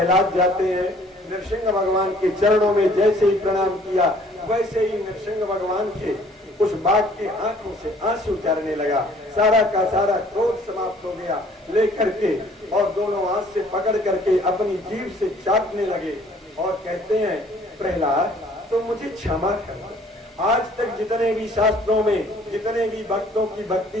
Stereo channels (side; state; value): both; normal; correlation 0.57